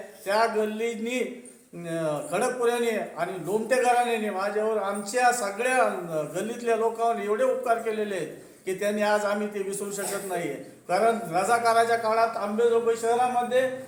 त्या गल्लीनी खडकपुऱ्याने आणि लोमटे घराण्याने माझ्यावर, आमच्या सगळ्या गल्लीतल्या लोकांवर एवढे उपकार केलेले आहेत की त्यांनी आज आम्ही ते विसरू शकत नाही. कारण रजाकाराच्या काळात अंबेजोगाई शहरामध्ये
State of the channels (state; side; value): identical; both; correlation 1.00